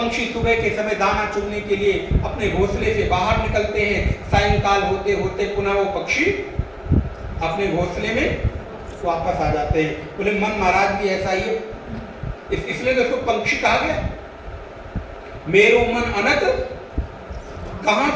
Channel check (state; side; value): identical; both; correlation 1.00